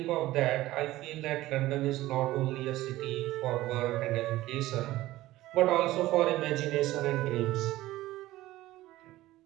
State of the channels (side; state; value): left; quieter; 16.6 dB